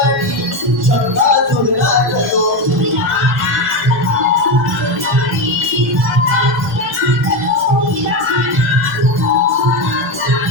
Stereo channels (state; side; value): noise; right; hum, 29 dB below the sound